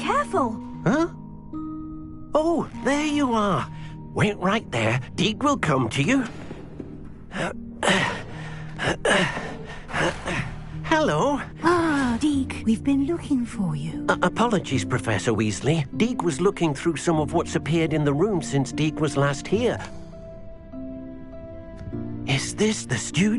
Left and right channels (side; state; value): both; identical; correlation 1.00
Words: Huh? Oh, there you are. Wait right there. Deek will come to you. Hello. Ah, Deek, we've been looking for you. Apologies, Professor Weasley. Deek was looking through some of what's appeared in the room since Deek was last here. Is this the